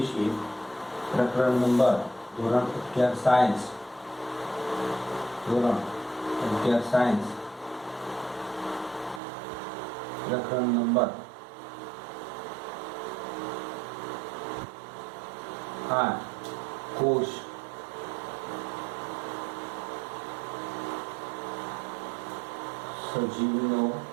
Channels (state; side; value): drops out; left; at 9.2 s